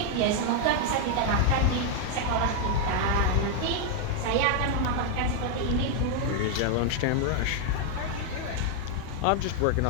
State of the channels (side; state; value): both; different; correlation 0.00